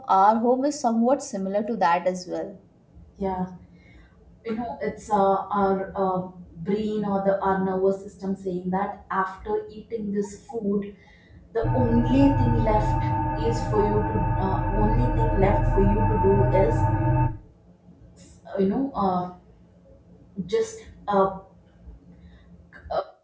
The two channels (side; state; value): both; identical; correlation 1.00